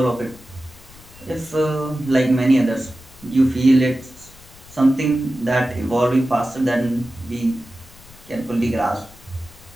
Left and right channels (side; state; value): left; noise; rumble, 23 dB below the sound